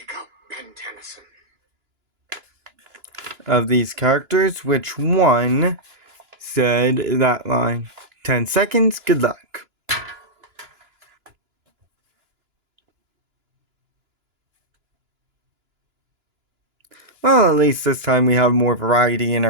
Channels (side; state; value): left; late; 2.9 ms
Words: up, Ben Tennyson. Of these characters, which one said that line? 10 seconds, good luck. Well, at least this time we have more variety in